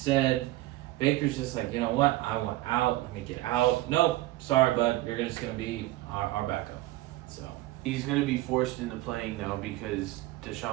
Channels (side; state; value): left; quieter; 17.6 dB